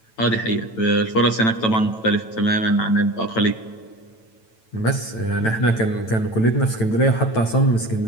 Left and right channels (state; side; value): late; right; 9.0 ms